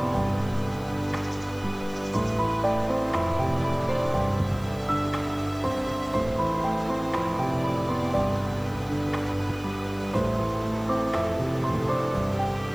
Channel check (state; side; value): noise; left; hiss, 24 dB below the sound